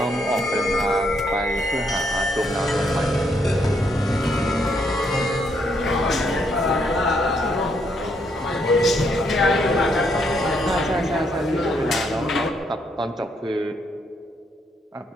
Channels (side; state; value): both; normal; correlation 0.74